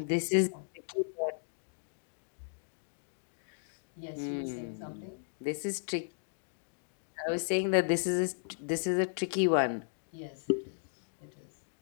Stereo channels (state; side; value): silent; right; digital silence